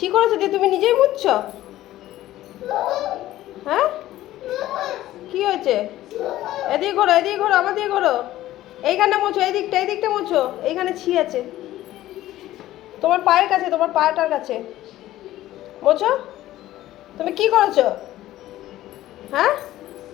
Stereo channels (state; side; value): quieter; right; 14.8 dB